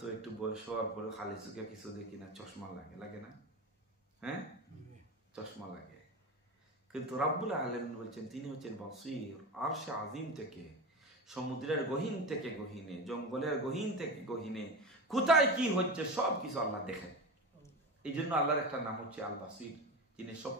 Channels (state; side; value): normal; both; correlation 0.25